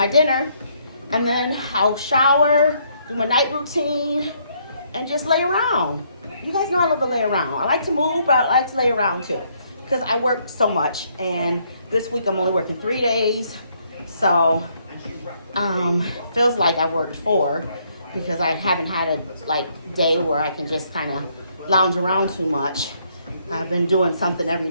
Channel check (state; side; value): inverted; both; correlation -0.70